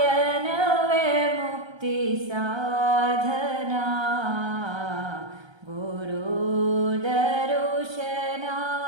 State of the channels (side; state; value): left; late; 1.3 ms